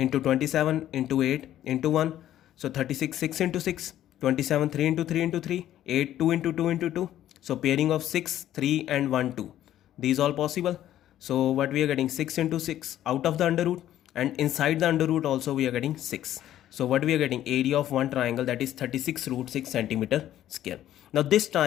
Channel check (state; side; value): quieter; right; 12.3 dB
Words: 27 into 8 into 1. So 36, 6 into 6. 27, 3 into 3 into 3. 8, 2 into 2 into 2. So pairing of 6, 3 and 1, 2. These all possible. So what we are getting? 6 into 6 out of the under root, and inside the under root also we are getting 6. So what we are getting? Area of one triangle, that is 36 root 6 centimeter square. Now this